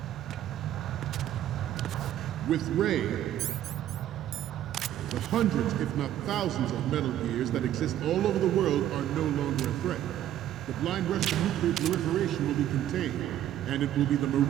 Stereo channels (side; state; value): left; quieter; 11.9 dB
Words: With Ray, the hundreds, if not thousands, of Metal Gears that exist all over the world are no longer a threat. The blind rush to nuclear proliferation will be contained, and it will be the